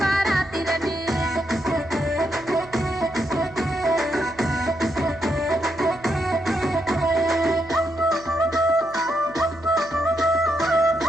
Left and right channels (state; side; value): noise; right; hum, 20 dB below the sound